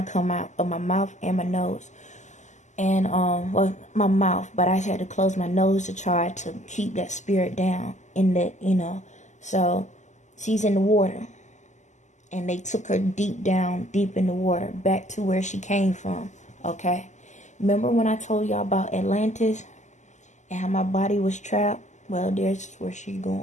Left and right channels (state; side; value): late; right; 0.34 ms